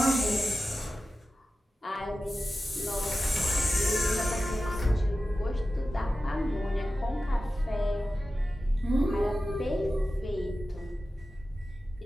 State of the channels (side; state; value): both; normal; correlation 0.94